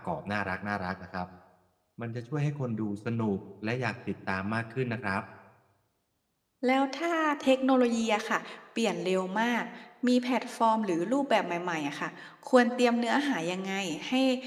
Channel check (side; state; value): both; identical; correlation 1.00